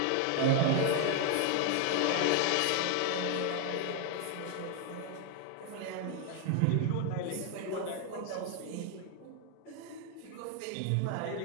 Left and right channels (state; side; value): different; both; correlation 0.01